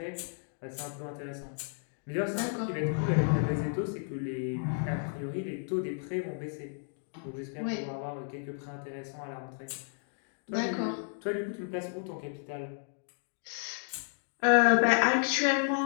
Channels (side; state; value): right; silent; digital silence